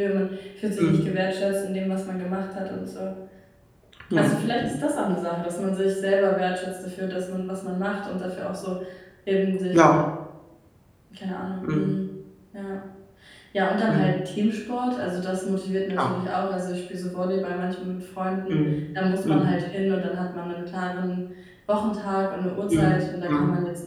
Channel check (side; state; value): both; identical; correlation 1.00